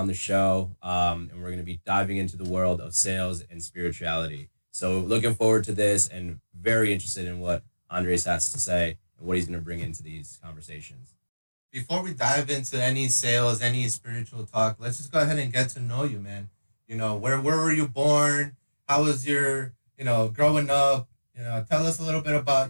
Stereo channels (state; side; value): inverted; both; correlation -1.00